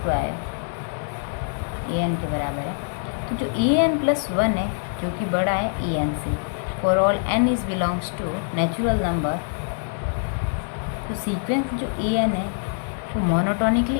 an के बराबर है। तो जो an+1 है जो कि बड़ा है en से, for all n is belongs to natural number, तो सीक्वेंस जो an है वो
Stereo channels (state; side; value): silent; right; digital silence